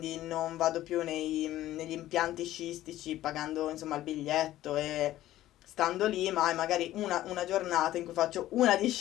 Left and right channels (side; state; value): right; quieter; 14.3 dB